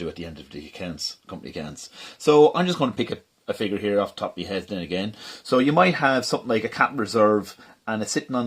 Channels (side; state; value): both; identical; correlation 1.00